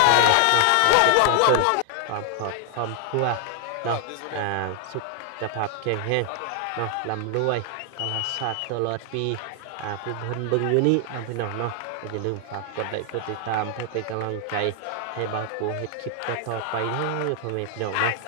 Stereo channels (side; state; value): both; different; correlation 0.00